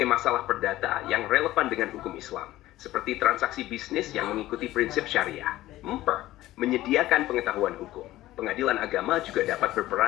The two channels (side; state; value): right; quieter; 15.8 dB